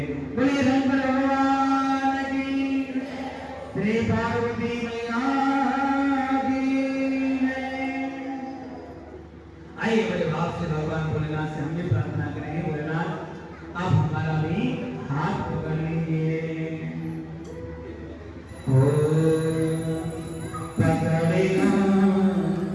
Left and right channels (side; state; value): both; identical; correlation 1.00